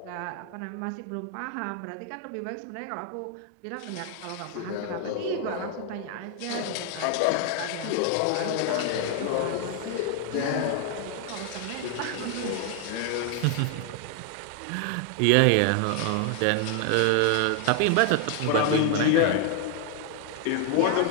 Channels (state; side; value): different; both; correlation 0.00